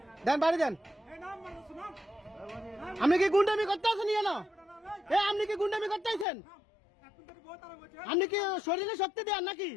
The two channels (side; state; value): right; drops out; at 6.2 s